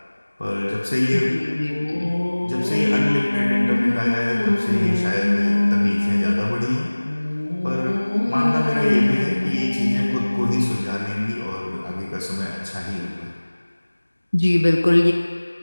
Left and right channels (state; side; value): inverted; both; correlation -1.00